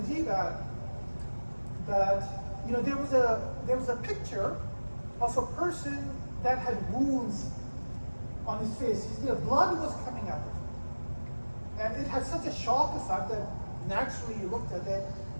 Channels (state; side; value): inverted; both; correlation -1.00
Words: Ajib ad that, there was a picture of a person that had wounds on his face. Blood was coming out of him. And it had such a shock effect that naturally you looked at it